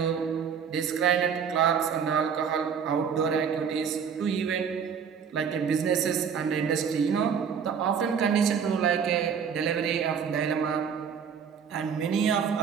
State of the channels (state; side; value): quieter; left; 7.0 dB